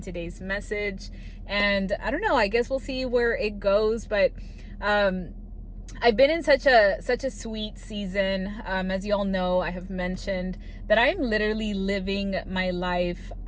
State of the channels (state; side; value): identical; both; correlation 1.00